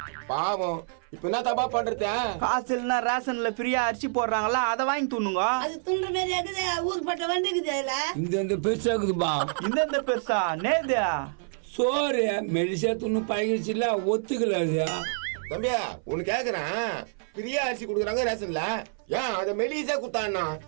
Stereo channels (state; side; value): silent; left; 58 dB below the other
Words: பாவம், இப்ப என்ன தப்பா பண்றது? காசு இல்லைன்னா ரேஷன்ல ஃப்ரீயா அரிசி போடுறாங்களா, அதை வாங்கி துண்ணுங்க. அது துண்டுற மாதிரி இருக்குது, ஊர் பட்ட வந்துக்குது அதுல. இந்த பெருசா இருக்குதுப்பா. இந்த பெருசா நேது சோறு மெடிசா துண்ணு பழகிடுச்சுல, ஒத்துக்கல அது. தம்பியா உனக்கு கேக்குறேன், பிரியா அரிசி குடுக்குறாங்க ரேஷன்ல, ஏன் அதை மெலிசா குத்தான்னா?